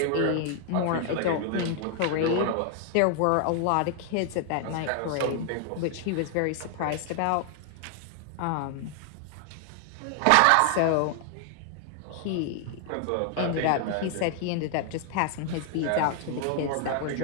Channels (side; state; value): both; different; correlation 0.00